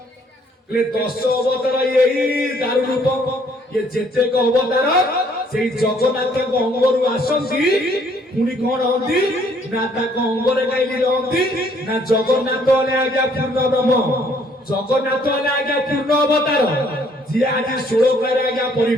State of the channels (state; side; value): normal; both; correlation 0.64